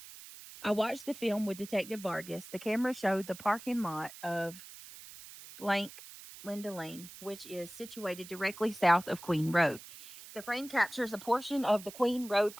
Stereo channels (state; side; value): noise; right; hiss, 16 dB below the sound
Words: I watched the film with Detective Vargas. The camera showed the parking lot of blank Linda Lane, which is situated directly south of Queen Road. The frame captures a portion of the Queen Road